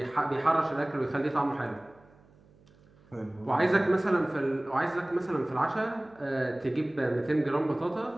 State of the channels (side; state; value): right; noise; hum, 28 dB below the sound